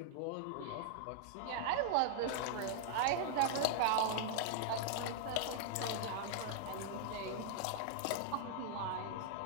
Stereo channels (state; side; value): different; both; correlation -0.01